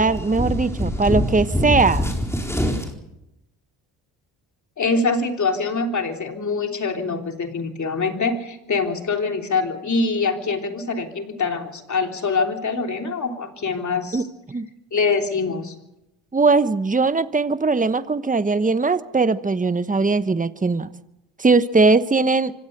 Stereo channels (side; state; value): both; normal; correlation 0.32